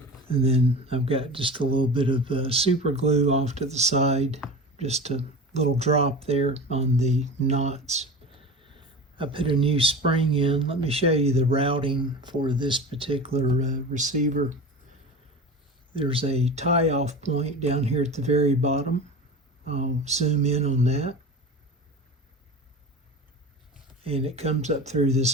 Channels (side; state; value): both; normal; correlation 0.32